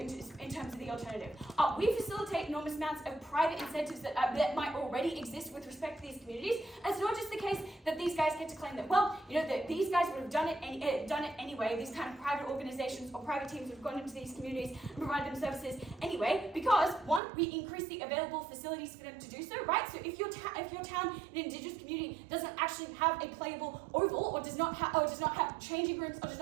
terms of the alternative? We facilitate enormous amounts of private incentives that might already exist with respect to these communities. And it's not just the case that these guys get to claim that, that these guys would have done it anyway. These kind of private organizations or private teams would have gone into these communities and provided them services anyway, because one, we increase the available facilities for them to do so, right? So if your town, an indigenous community, doesn't actually have a playable oval, or does not have changing rooms, or does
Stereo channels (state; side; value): drops out; left; at 17.2 s